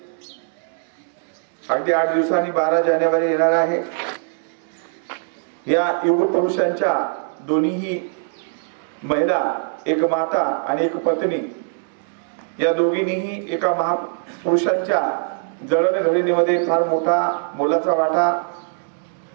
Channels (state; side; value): silent; left; digital silence